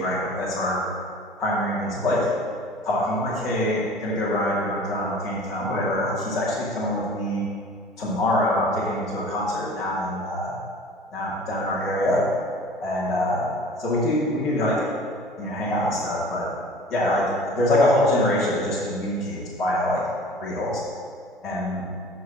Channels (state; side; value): normal; both; correlation 0.44